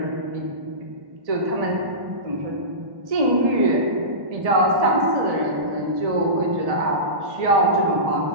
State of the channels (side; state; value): left; late; 1.1 ms